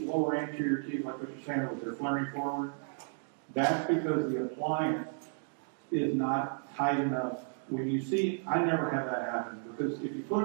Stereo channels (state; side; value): silent; left; 56 dB below the other